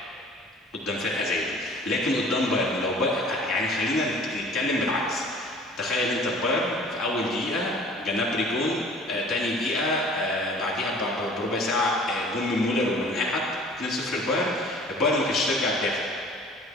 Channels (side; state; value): both; normal; correlation 0.49